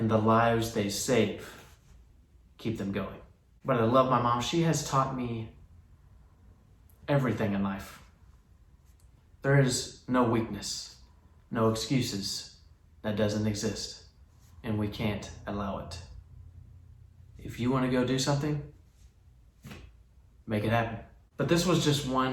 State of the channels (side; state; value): both; identical; correlation 1.00